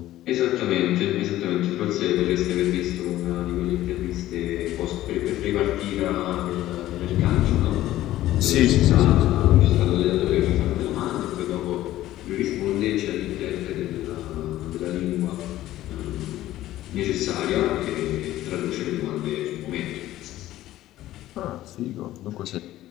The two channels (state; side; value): quieter; right; 14.6 dB